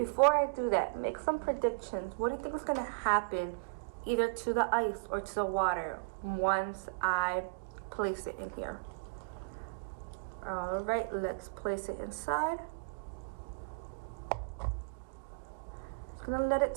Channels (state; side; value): quieter; left; 35.1 dB